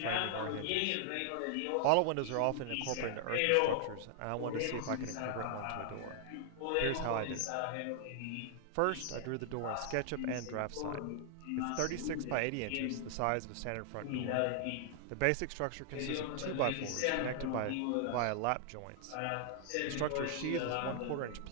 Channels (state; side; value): different; both; correlation -0.01